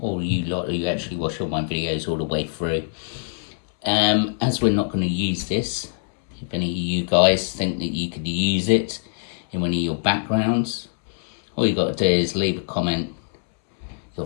you lot who actually watch all my videos all the way through. As we're not going to use this, if any of you guys think that you could use it in one of your backgrounds, all you got to do is leave a comment,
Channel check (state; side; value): silent; right; 62 dB below the other